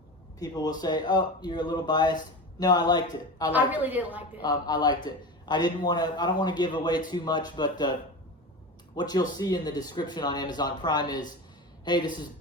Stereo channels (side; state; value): both; normal; correlation 0.27